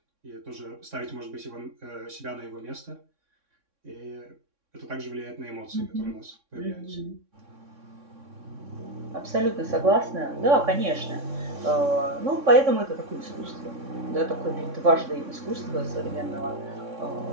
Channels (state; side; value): late; left; 3.6 ms